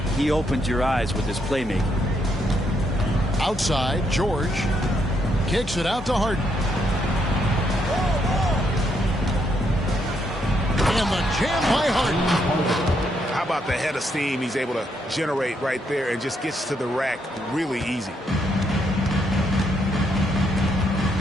he opens your eyes with his playmaking. Outside, George kicks it out to Harden. And the jam by Harden. How about the head of steam he's able to generate right there and just gets to the rack really easy.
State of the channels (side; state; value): both; normal; correlation 0.76